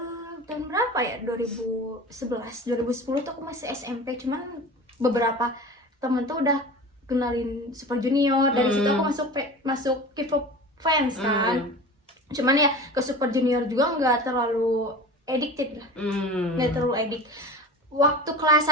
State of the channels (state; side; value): normal; both; correlation 0.34